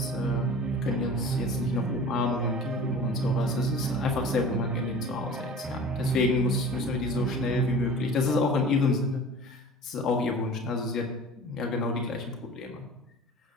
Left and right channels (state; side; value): normal; both; correlation 0.40